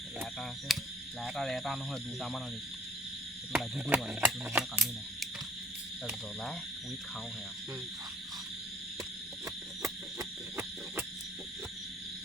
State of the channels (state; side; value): normal; both; correlation 0.58